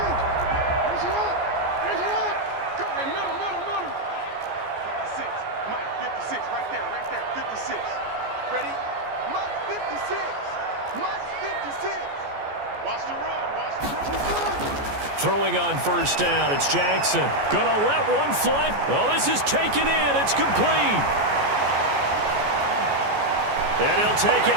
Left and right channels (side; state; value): left; late; 14 ms